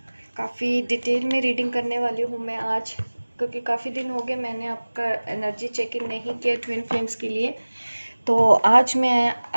काफ़ी डिटेल में रीडिंग करने वाली हूँ मैं आज, क्योंकि काफ़ी दिन हो गए मैंने आपका एनर्जी चेकिंग नहीं किया ट्विन फ्लेम्स के लिए। तो आज मैं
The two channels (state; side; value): inverted; both; correlation -1.00